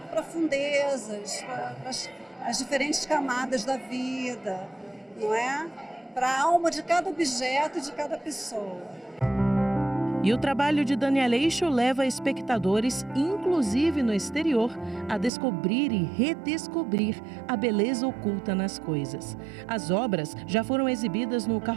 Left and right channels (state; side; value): drops out; left; at 15.3 s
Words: profundezas, para as diferentes camadas da vida. não é? Para a alma de cada objeto e de cada pessoa. E o trabalho de Daniel Eixo leva espectadores, inclusive no exterior, a descobrir e redescobrir a beleza oculta nas coisas. As obras já foram exibidas no